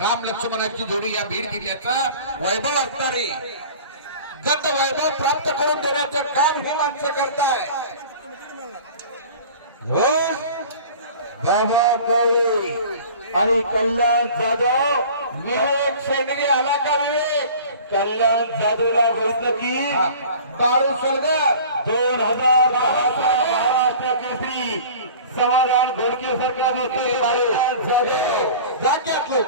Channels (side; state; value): both; inverted; correlation -0.42